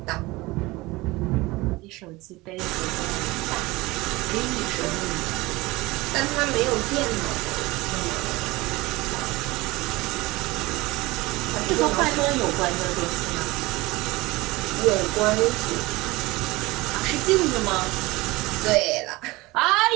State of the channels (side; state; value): left; quieter; 21.3 dB